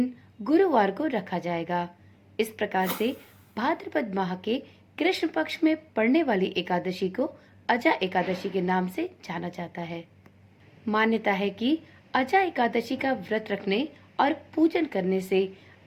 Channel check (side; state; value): both; identical; correlation 1.00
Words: गुरुवार को रखा जाएगा। इस प्रकार से भाद्रपद माह के कृष्ण पक्ष में पड़ने वाली एकादशी को अचा एकादशी के नाम से जाना जाता है। मान्यता है कि अचा एकादशी का व्रत रखने और पूजन करने से